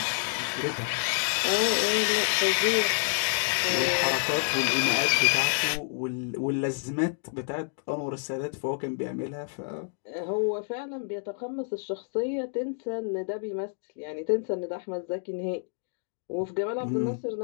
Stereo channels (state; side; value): silent; right; digital silence